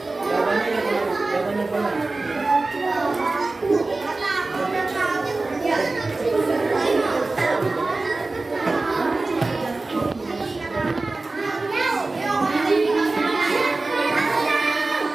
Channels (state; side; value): quieter; left; 3.3 dB